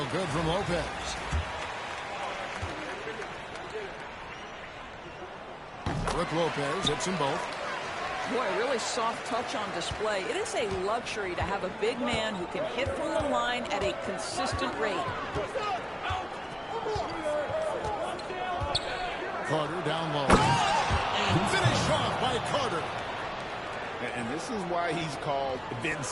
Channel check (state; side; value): identical; both; correlation 1.00